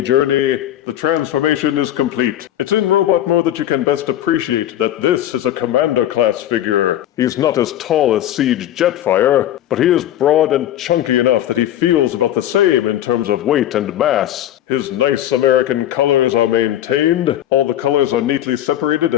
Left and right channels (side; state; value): right; quieter; 12.2 dB